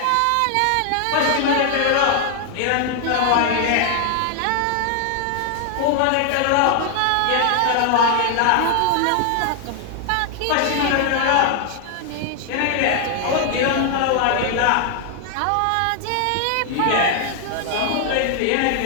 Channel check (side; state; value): both; different; correlation 0.00